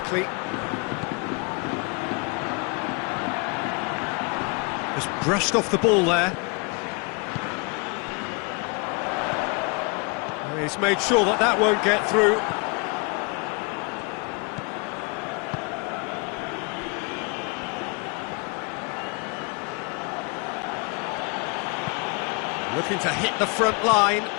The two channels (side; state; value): right; quieter; 31.8 dB